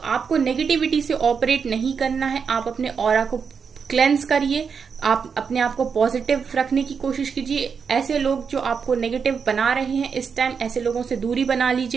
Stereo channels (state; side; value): quieter; left; 6.1 dB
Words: नेगेटिविटी से ऑपरेट नहीं करना है, आप अपने ऑरा को क्लेंस करिए, आप अपने आप को पॉजिटिव रखने की कोशिश कीजिए। ऐसे लोग जो आपको नेगेटिव बना रहे हैं इस टाइम, ऐसे लोगों से दूरी बना